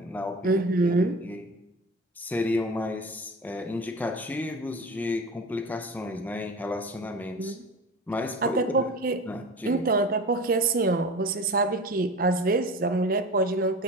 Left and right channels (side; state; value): both; normal; correlation 0.33